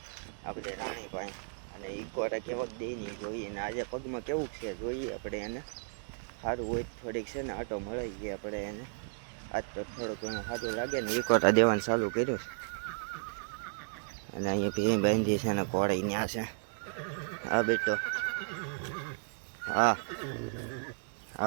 આપણે રાણી પાસે. અને ઇકોરા કેવાક દે નહીં જોઈએ ને આજે પગમાં કેવું છે જોઈએ આપણે એને. સારું હોય થોડીક છે ને આટો મળી ગઈ આપણે એને. આજ તો થોડું ઘણું સારું લાગે ને ઇકોરા દેવાનું ચાલુ કર્યું. અને અહીંયા ભીમ બાંધી છે ને ઘોડે ત્યાં છે. હા બેટો, હા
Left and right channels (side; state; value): left; silent; digital silence